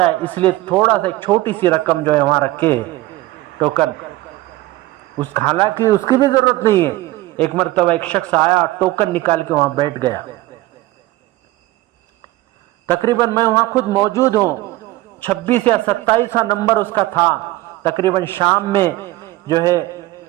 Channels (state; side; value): quieter; left; 17.9 dB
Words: اس لیے تھوڑا سا ایک چھوٹی سی رقم جو ہے وہاں رکھے ٹوکن، حالانکہ اس کی بھی ضرورت نہیں ہے۔ ایک مرتبہ ایک شخص آیا، ٹوکن نکال کے وہاں بیٹھ گیا، تقریباً میں وہاں خود موجود ہوں، 26 یا 27 نمبر اس کا تھا، تقریباً شام میں جو ہے